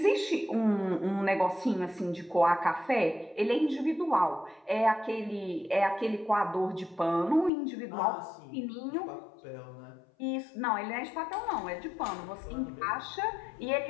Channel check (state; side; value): drops out; right; at 7.5 s